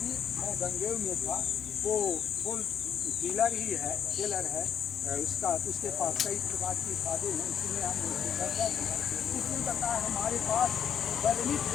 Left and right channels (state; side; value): quieter; right; 8.4 dB